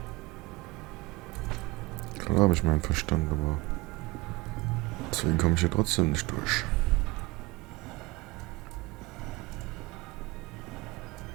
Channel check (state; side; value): quieter; left; 21.8 dB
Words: Klar habe ich meinen Verstand, aber deswegen komme ich hier trotzdem nicht durch.